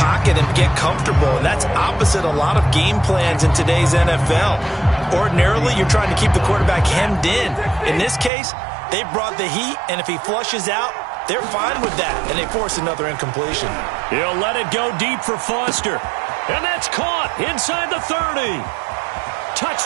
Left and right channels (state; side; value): drops out; left; at 8.3 s